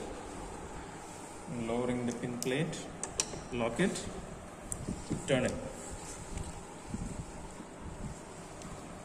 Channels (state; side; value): identical; both; correlation 1.00